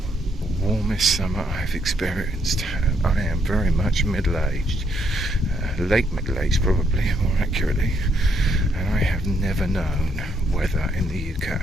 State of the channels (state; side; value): normal; both; correlation 0.73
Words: warmest summer I've experienced. I am very much middle-aged, late middle-aged probably, more accurately, and I have never known weather in the